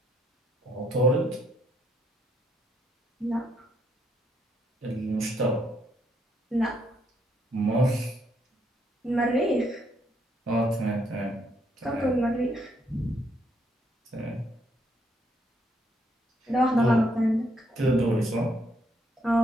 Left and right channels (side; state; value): both; normal; correlation 0.73